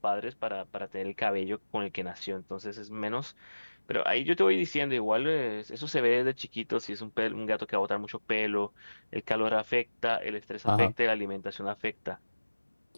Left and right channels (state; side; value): inverted; both; correlation -1.00